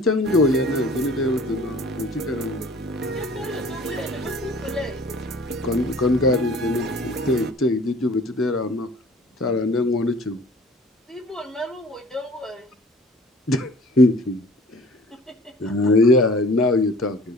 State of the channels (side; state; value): both; normal; correlation 0.48